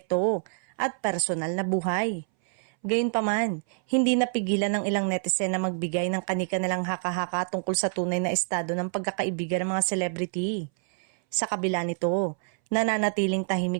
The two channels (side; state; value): left; silent; 60 dB below the other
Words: at personal na buhay. Gayunpaman, hindi napigilan ng ilang netizen na magbigay ng kanika nilang haka-haka tungkol sa tunay na estado ng pagkakaibigan ng mga celebrity. Sa kabila nito, nananatiling